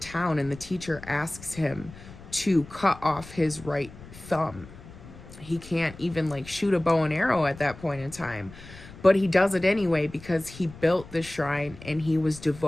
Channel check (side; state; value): left; noise; rumble, 17 dB below the sound